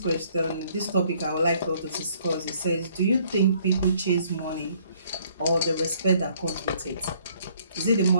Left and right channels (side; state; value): both; inverted; correlation -0.63